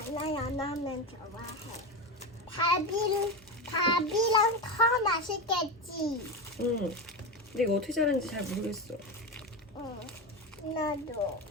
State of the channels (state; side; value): normal; both; correlation 0.18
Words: 나 연어면 좋아해. 밥이랑 더 맛있겠지. 응. 근데 이거 어떻게 자르는지 잘 모르겠어. 응, 나도